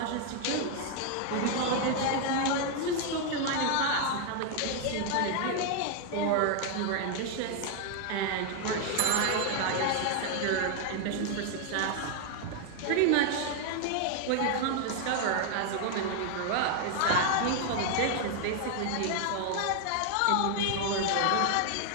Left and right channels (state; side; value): different; both; correlation 0.00